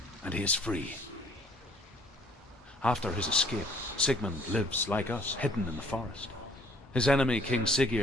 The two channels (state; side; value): normal; both; correlation 0.60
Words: and he is free. After his escape, Sigmund lives like us, hidden in the forest. His enemy, King